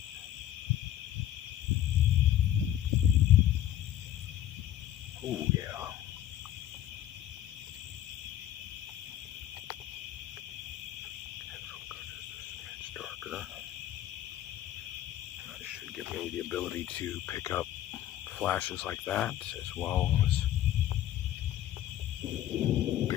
Oh yeah. That should give me the ability to pick up flashes like that, as well as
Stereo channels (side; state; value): right; quieter; 11.9 dB